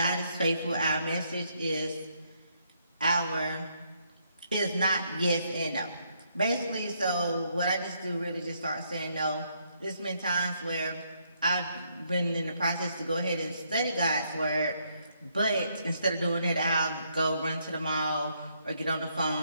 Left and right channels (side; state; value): both; inverted; correlation -0.73